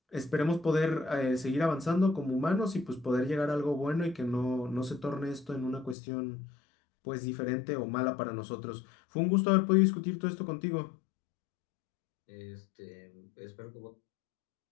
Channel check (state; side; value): drops out; right; at 6.0 s